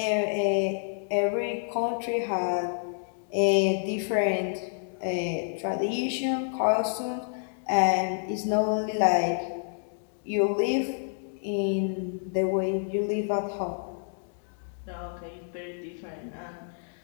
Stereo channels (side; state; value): right; silent; digital silence